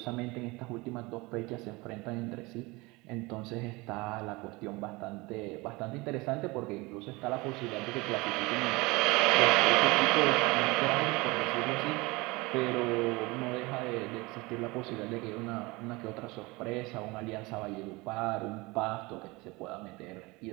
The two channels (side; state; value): left; quieter; 23.7 dB